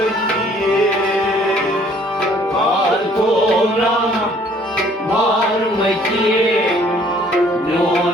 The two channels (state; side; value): normal; both; correlation 0.59